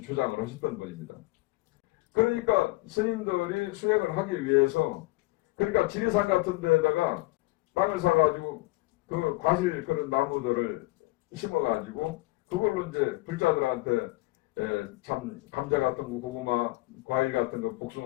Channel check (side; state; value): right; quieter; 21.2 dB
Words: 주장을 하셨던 분입니다. 그러니까 스님들이 수행을 하기 위해서 그러니까 지리산 같은 데다가 땅을 사가지고 그 과실 그런 나무들을 심어가지고 그걸로 이제 불자들한테 참 감자 같은 거, 고구마, 과일 같은 거,